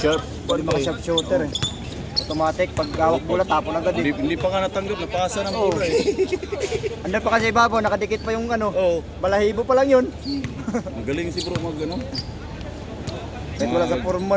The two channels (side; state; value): both; identical; correlation 1.00